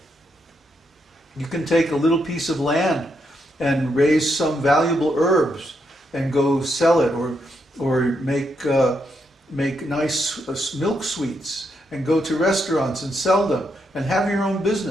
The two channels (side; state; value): both; normal; correlation 0.80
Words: You can take a little piece of land and raise some valuable herbs and go sell it, or make nice milk sweets and go to restaurants and sell them and have your own